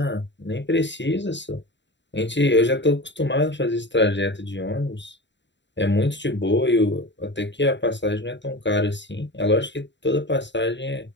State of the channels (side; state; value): right; late; 0.52 ms